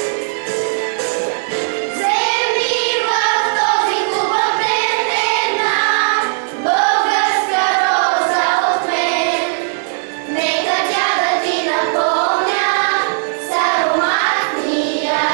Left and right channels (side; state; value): left; silent; digital silence